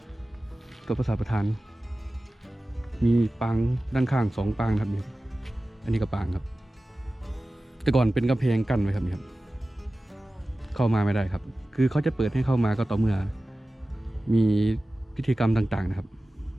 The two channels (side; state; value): both; normal; correlation 0.96